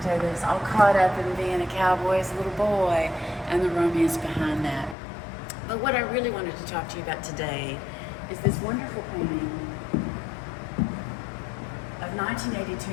Douglas, all caught up in being a cowboy as a little boy and the romance behind that. But what I really wanted to talk to you about today is this wonderful painting of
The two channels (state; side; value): drops out; right; at 5.0 s